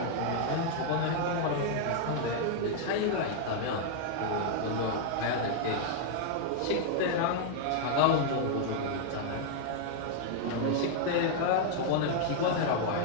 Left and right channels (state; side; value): different; both; correlation -0.01